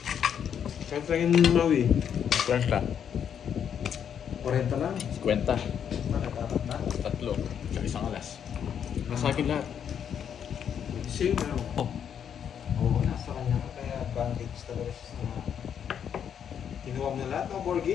Kahit lang yung mawi. 50. 40 lang. 50. Nakatapat na. Tatlo. Tsaka isang alas. Nasa akin lahat. Same na ako. Oh. Oo, nasa kanya ka. Kaya advantage talaga siya sa kinuha mo na lahat, no,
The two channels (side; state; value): right; quieter; 8.4 dB